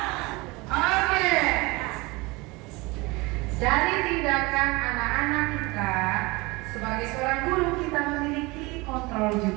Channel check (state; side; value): quieter; left; 24.2 dB